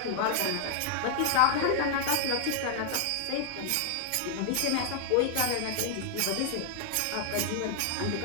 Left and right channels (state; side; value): different; both; correlation 0.00